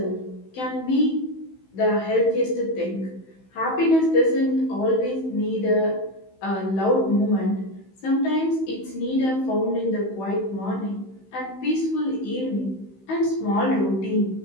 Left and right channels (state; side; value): late; right; 15 ms